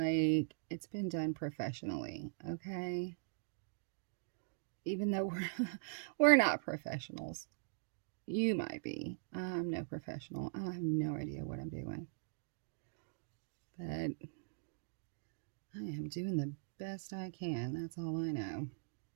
it's been done professionally, okay? Even though we're not professionals. You might be. I'm no professional. I have no idea what I'm doing. But I am doing the best I can. That's all I know.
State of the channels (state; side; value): silent; left; digital silence